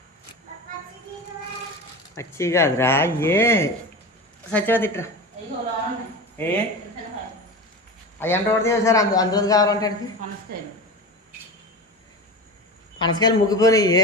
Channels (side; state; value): both; normal; correlation 0.28